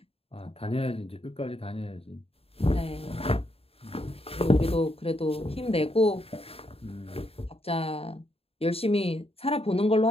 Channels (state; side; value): late; right; 0.28 ms